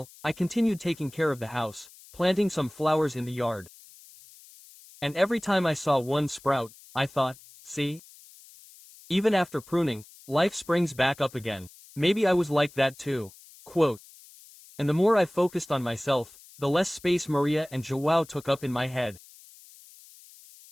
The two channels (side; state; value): left; noise; hiss, 22 dB below the sound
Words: I continued taking care of the house, planting some flowers in the yard. And every time I saw one sprout, I thought, see? Even after pruning, life springs back up again. Maybe I was like that too. Quote. And the more I focused on myself, the less space Maria and João took up in my head.